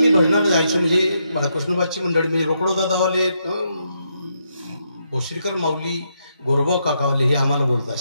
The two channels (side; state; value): both; inverted; correlation -0.79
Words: भजनाला जायचो म्हणजे बाळकृष्णबाची मंडळी म्हणजे रोकडो दादावाले भोसरीकर माऊली गोरबा काकावाले हे आम्हाला बोलत